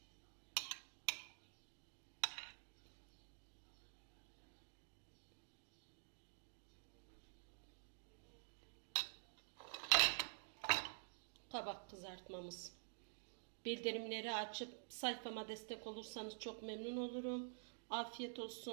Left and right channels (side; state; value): left; silent; digital silence